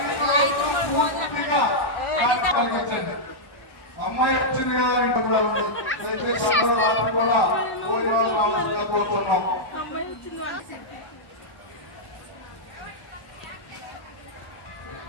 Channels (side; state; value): right; late; 1.1 ms